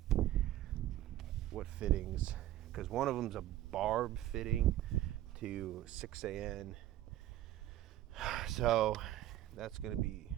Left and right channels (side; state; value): left; quieter; 13.9 dB